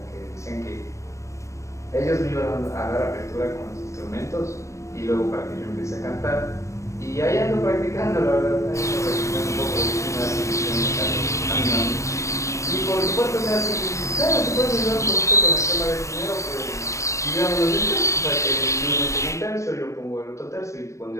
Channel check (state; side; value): late; right; 0.15 ms